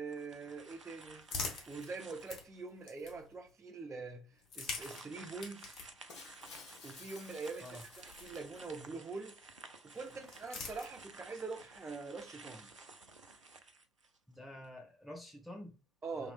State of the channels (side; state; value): both; normal; correlation 0.63